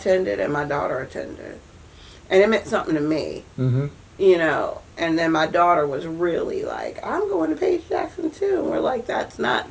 and my daughter attended. And it meant something to me. You know, and then my daughter was really like, I'm going to Paige Jackson too. And we're like, that's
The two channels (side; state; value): both; identical; correlation 1.00